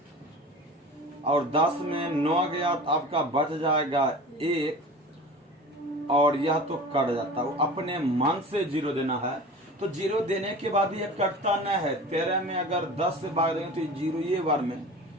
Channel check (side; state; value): both; normal; correlation 0.37